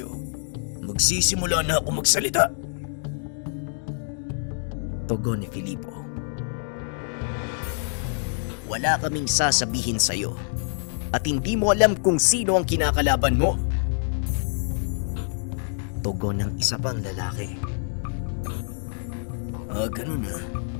magsisimula na ako magsalita. Tugon ni Filipo. Wala kaming sasabihin sa'yo at hindi mo alam kung sino ang kinakalaban mo. Tugon ng isa pang lalaki. Ganun na.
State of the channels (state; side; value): silent; right; digital silence